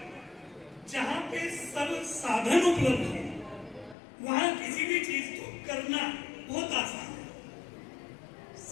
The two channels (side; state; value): right; drops out; at 4.0 s